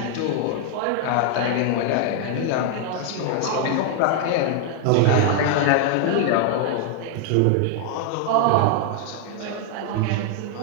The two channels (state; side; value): different; both; correlation 0.00